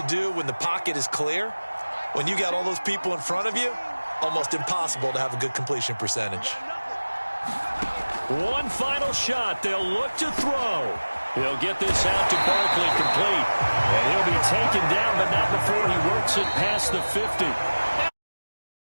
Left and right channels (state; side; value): inverted; both; correlation -1.00